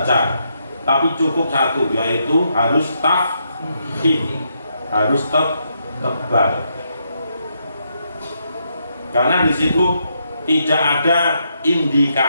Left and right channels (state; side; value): inverted; both; correlation -0.78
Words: tapi cukup satu, yaitu harus tafkhim, harus tebal. Karena di situ tidak ada